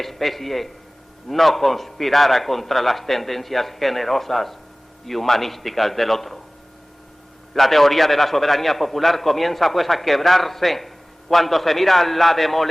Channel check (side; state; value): both; normal; correlation 0.98